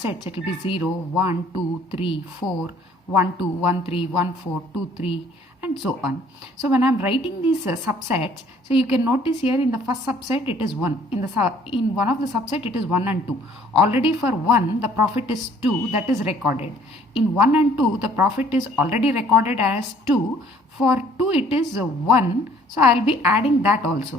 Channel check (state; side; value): normal; both; correlation 0.58